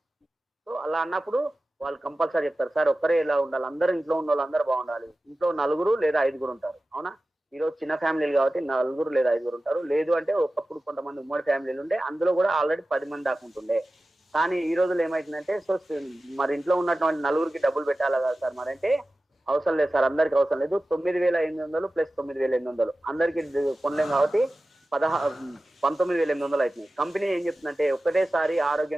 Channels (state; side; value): normal; both; correlation 0.95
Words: సో అలా అన్నప్పుడు వాళ్ళు కంపల్సరీ చెప్తారు సార్ ఒక్కరే ఇలా ఉండాలి, అందరూ ఇంట్లో ఉన్న వాళ్ళు అందరూ బాగుండాలి. ఇంట్లో 4 లేదా 5 ఉంటారు. అవునా? ఈరోజు చిన్న ఫ్యామిలీలు కాబట్టి 4 లేదా 5 ఉంటారు. లేదు అంటే ఒకప్పుడు కొంతమంది ఉమ్మడి ఫ్యామిలీలు ఉండే, అందులో కూడా ఆల్రెడీ 10 మంది దాకా ఉంటుండే. కానీ ఈ రోజులు ఏమైతుందంటే సో మరి ఇంట్లో ఉన్నటువంటి 4కి డబ్బులు పెట్టాలా కదా సార్ మరి అంటే అవసరం లేదు సార్, అందరికి అవసరం లేదు. 9,800 ప్లస్ 9,800 అందరికి కొనలేం కాబట్టి 19,800 అవుతుంది. కంపెనీ ఏం చెప్తుందంటే ఒకటేసారి